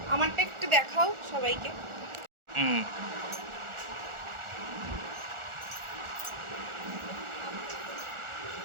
আমারটা একটু দেখাও সবাইকে।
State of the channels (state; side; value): late; left; 1.4 ms